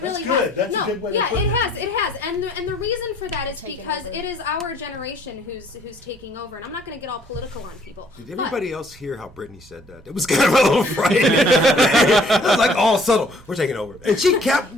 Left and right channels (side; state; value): both; normal; correlation 0.60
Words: really has. That's a good way to put it. It has. And the reason for that is because it is our generation who's taking over. And I'm not going to get all political on people. Did everybody else hear how Brittany said that? It was kind of a little frightening. It was like all subtle. We're taking over. And she kept